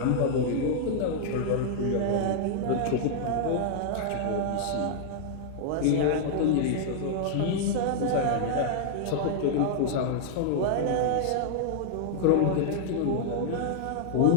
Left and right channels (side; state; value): both; different; correlation -0.01